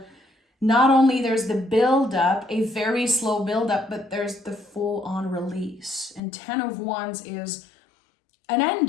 not only there's the build-up, a very slow build-up, but there's the full-on release. And 10 of Wands is an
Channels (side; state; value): right; drops out; at 6.2 s